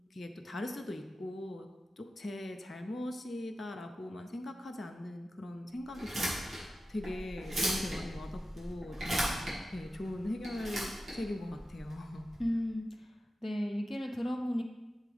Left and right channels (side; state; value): both; normal; correlation 0.93